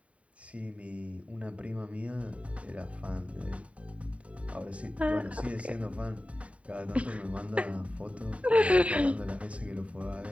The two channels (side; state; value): left; late; 0.065 ms